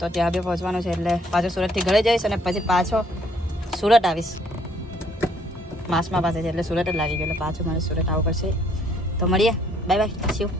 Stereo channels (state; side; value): normal; both; correlation 0.65